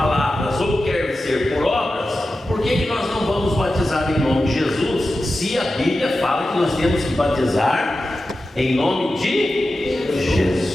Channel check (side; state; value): both; normal; correlation 0.93